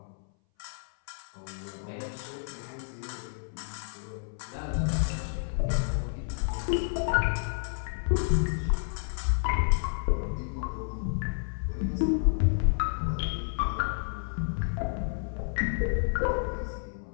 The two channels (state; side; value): silent; right; 58 dB below the other